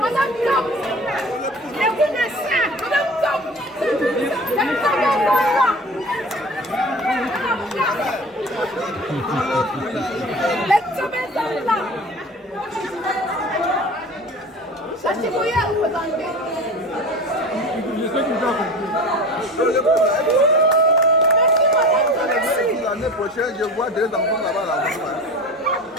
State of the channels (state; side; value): normal; both; correlation 0.37